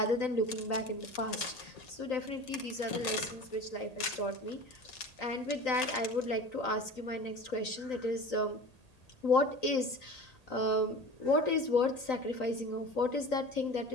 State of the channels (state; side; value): late; right; 1.8 ms